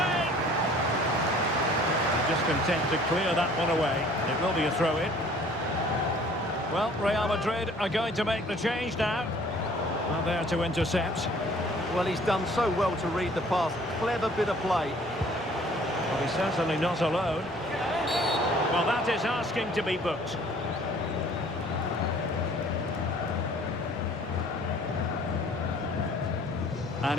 Just content to clear that one away. It will be a throw-in. Well, Real Madrid are going to make the change now. Well, there to intercept. Well, he's done so well to read the pass. Clever bit of play. Well, he's certainly not alone. Well, that is asking to be booked. And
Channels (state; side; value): normal; both; correlation 0.54